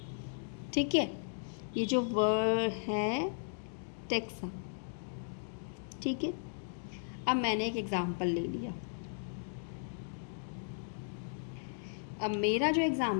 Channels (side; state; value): right; silent; digital silence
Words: ठीक है, ये जो वर्ड है टेक्सा, ठीक है। अब मैंने एक एग्जाम्पल ले लिया। अब मेरा जो